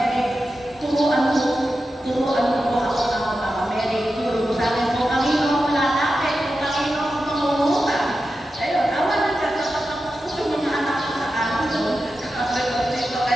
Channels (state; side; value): normal; both; correlation 0.91